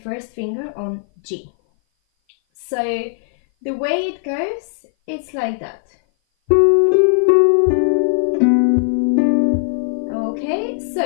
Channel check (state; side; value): silent; right; 57 dB below the other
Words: first finger on G. So the way it goes, it's like that. Okay,